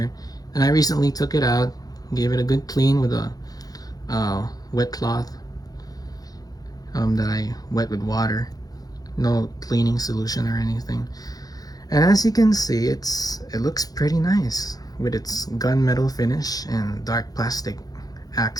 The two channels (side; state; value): right; late; 0.18 ms